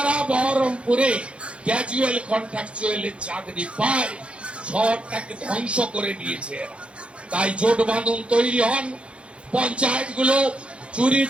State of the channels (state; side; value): late; left; 0.059 ms